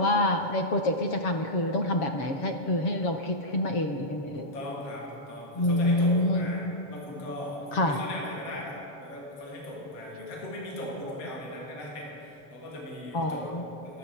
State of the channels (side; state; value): right; late; 7.2 ms